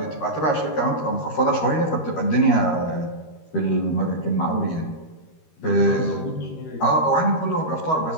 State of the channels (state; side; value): late; right; 13 ms